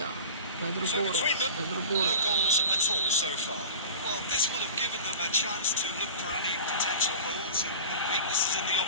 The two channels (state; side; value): inverted; both; correlation -0.36